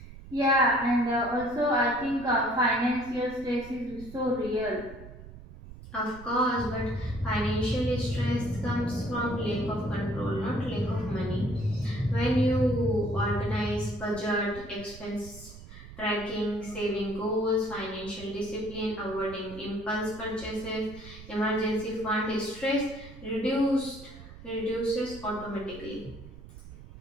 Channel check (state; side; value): noise; right; rumble, 16 dB below the sound